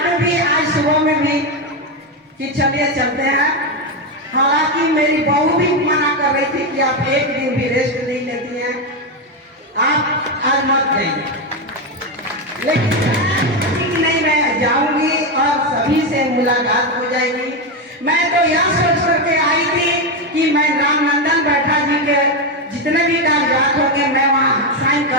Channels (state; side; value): normal; both; correlation 0.09